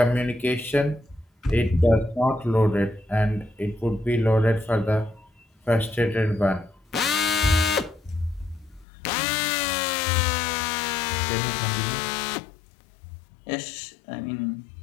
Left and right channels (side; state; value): right; drops out; at 8.8 s